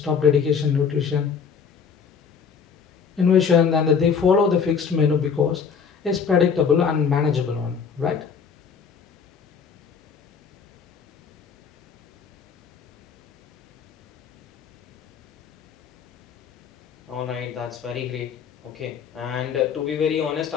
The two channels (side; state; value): right; quieter; 6.3 dB